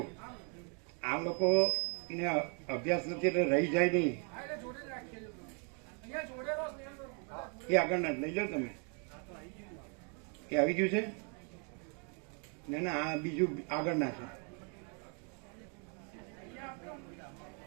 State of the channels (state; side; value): quieter; left; 38.6 dB